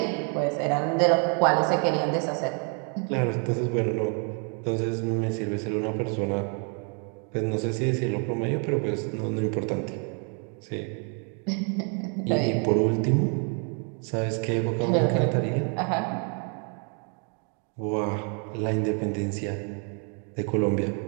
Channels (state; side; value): quieter; left; 40.0 dB